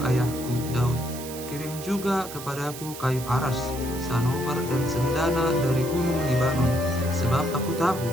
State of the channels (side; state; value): right; noise; hiss, 12 dB below the sound